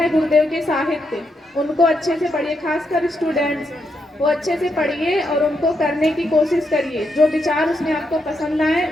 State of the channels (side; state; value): both; normal; correlation 0.81